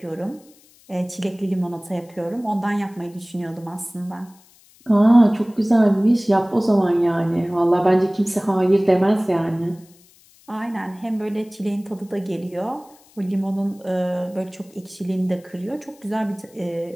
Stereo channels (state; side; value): noise; left; hiss, 28 dB below the sound